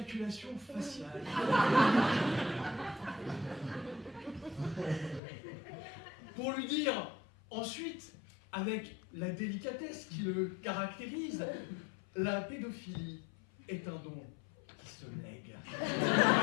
faciale. Pour lui dire ensuite, avec la délicatesse qui le caractérise, la pédophilie est un don qui se lègue.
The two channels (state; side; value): drops out; right; at 5.2 s